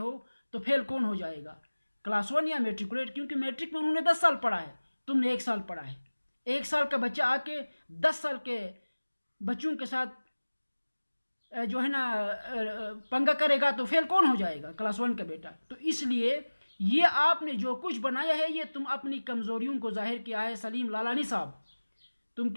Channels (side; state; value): both; inverted; correlation -1.00